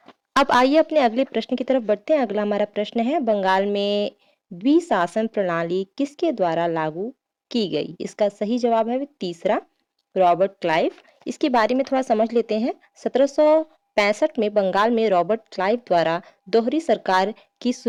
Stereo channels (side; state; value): both; identical; correlation 1.00